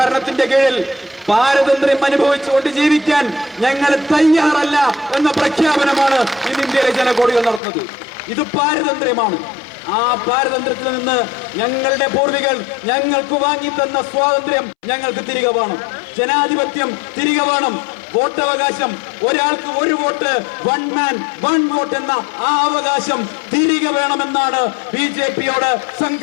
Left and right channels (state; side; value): drops out; right; at 7.6 s